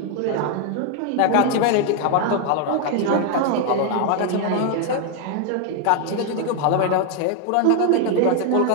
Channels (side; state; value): both; different; correlation 0.01